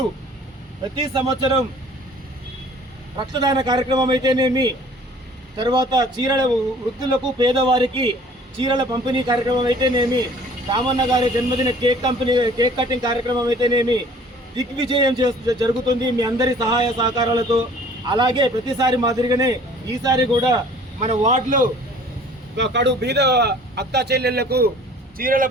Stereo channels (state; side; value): normal; both; correlation 0.51